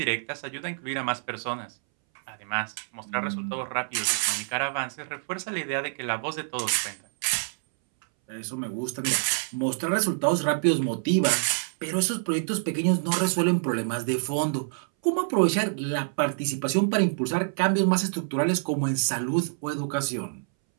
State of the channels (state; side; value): silent; left; 60 dB below the other